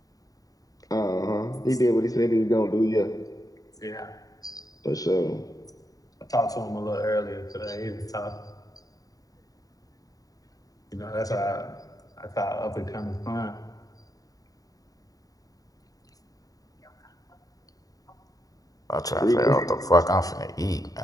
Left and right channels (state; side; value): late; right; 0.18 ms